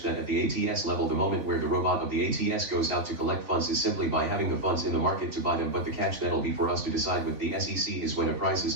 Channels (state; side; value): late; left; 3.5 ms